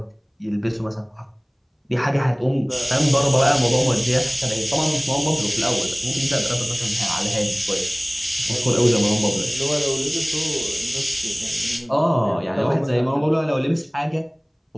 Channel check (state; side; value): identical; both; correlation 1.00